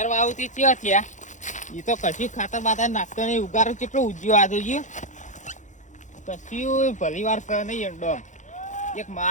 વાવતી કેવા થયા એ તો કશી ખાતર બાતર નાખતો નહીં ઉગારો કેટલો ઉજ્યો આ જોઈએ કશું ભલી વાર કરે નહીં ઈંડો એક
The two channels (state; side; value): late; right; 0.36 ms